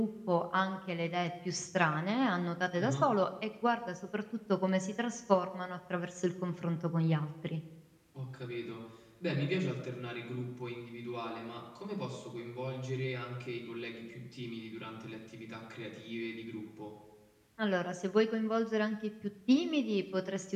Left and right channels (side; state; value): both; identical; correlation 1.00